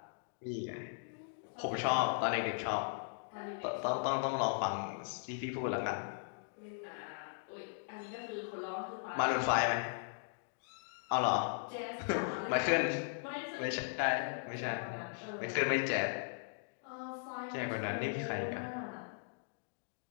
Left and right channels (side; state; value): right; silent; digital silence